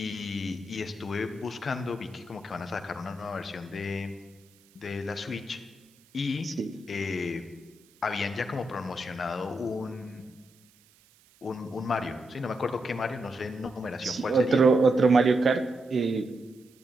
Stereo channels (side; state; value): right; noise; hiss, 30 dB below the sound